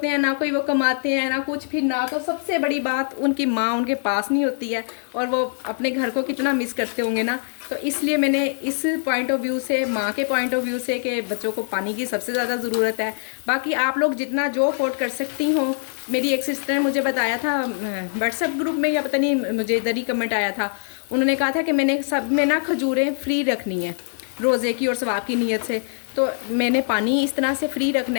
हैं ना, कोई वो कमाते हैं ना कुछ, फिर ना तो सबसे बड़ी बात उनकी माँ उनके पास नहीं होती है, और वो अपने घर को कितना मिस करते होंगे ना। तो इसलिए मैंने इस पॉइंट ऑफ व्यू से, माँ के पॉइंट ऑफ व्यू से, कि बच्चों को पानी की सबसे ज़्यादा ज़रूरत है। बाकी आप लोग जितना जो अफोर्ड कर सकती हो, मेरी एक सिस्टर ने मुझे बताया था व्हाट्सएप ग्रुप में, या पता नहीं, मुझे इधर ही कमेंट आया था, उन्होंने कहा था कि मैंने सब में ना खजूरें फ्री रखनी है रोज़े की और सवाब की नीयत से। तो मैंने पानी इस तरह से फ्री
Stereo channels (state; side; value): silent; right; digital silence